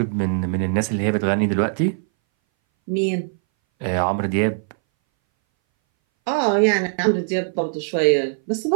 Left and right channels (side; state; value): left; silent; 61 dB below the other